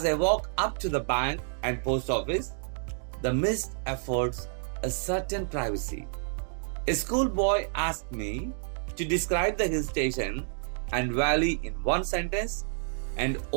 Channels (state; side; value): silent; left; digital silence